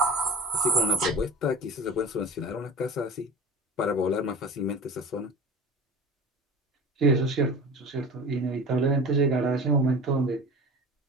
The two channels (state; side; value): normal; both; correlation 0.37